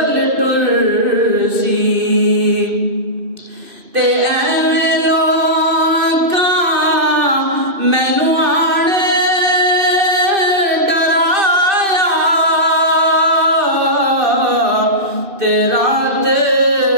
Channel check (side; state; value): left; late; 2.7 ms